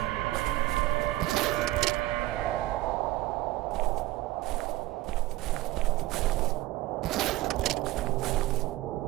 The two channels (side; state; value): left; quieter; 17.1 dB